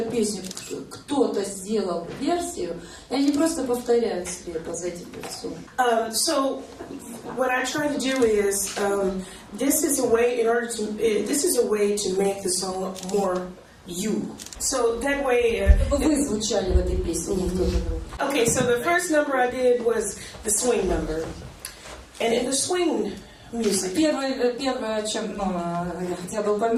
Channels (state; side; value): identical; both; correlation 1.00